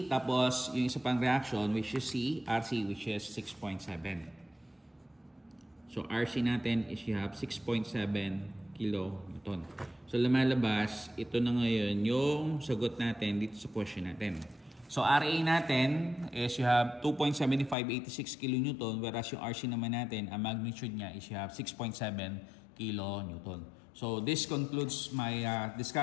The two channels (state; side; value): drops out; right; at 17.8 s